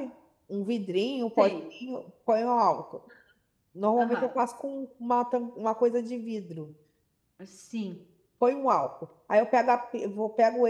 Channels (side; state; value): both; identical; correlation 1.00